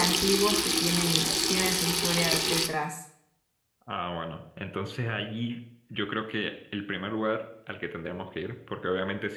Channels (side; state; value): both; identical; correlation 1.00